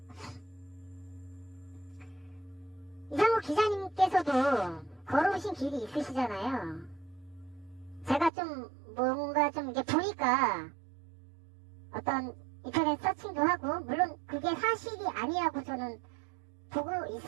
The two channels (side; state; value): left; drops out; at 8.3 s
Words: 이상우 기자님께서도 걸어오신 길이 있으시잖아요. 제가 좀 뭔가 좀 이렇게 보니까 어떤 인터넷 서칭도 하고 물론 그게 사실이 아니라고 저는 보고